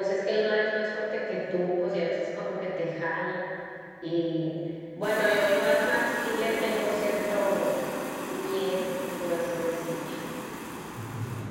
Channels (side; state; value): both; identical; correlation 1.00